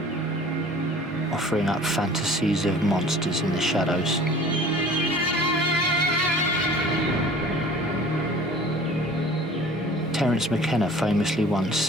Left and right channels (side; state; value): both; normal; correlation 0.46